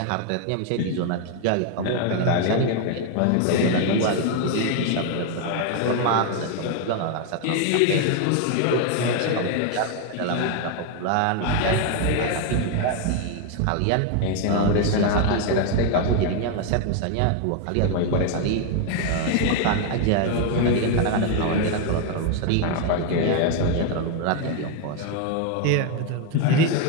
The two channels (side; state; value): both; different; correlation 0.01